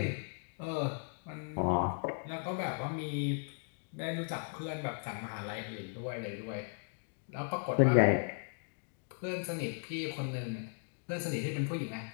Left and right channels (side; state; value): right; silent; 53 dB below the other